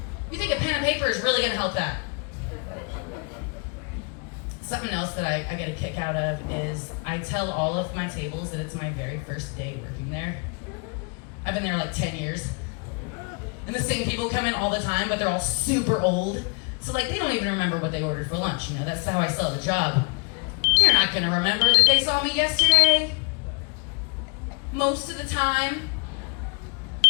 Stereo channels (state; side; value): quieter; right; 34.3 dB